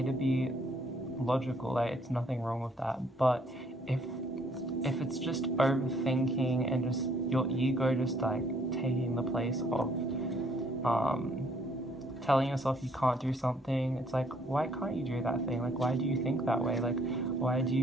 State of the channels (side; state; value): both; normal; correlation 0.64